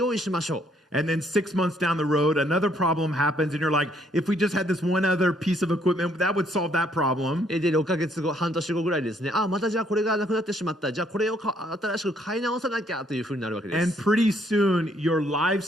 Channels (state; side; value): normal; both; correlation 0.68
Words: 意しましょう。And then 6 months down the road, another problem happens, and you're like, if we just had this one other piece of equipment, that would solve that problem. で6ヶ月後、半年後ぐらいですね、またじゃあこれがなくなってしまった、じゃあこれを新しく買い直さなきゃというふうになるわけで And す。pretty soon, your live